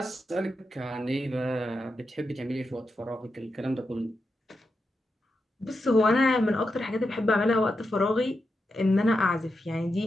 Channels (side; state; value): both; normal; correlation 0.87